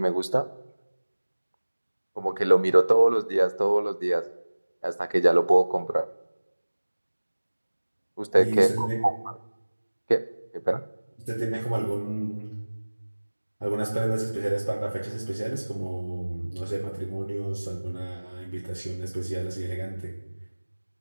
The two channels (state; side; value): inverted; both; correlation -1.00